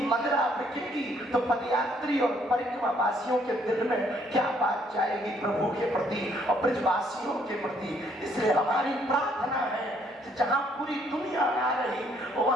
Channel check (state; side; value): normal; both; correlation 0.67